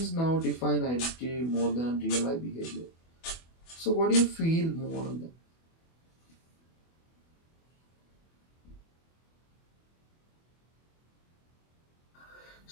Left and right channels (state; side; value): late; right; 24 ms